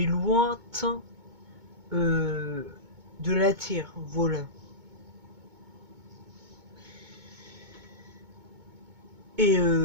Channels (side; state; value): left; late; 2.2 ms